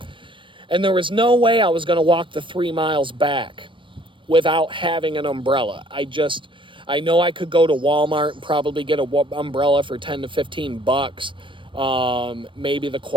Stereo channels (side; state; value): left; late; 0.25 ms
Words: And there was no way I was gonna walk the 3 miles back without having an umbrella. I know I could go to Walmart and probably get an umbrella for 10 to 15 bucks. Maybe the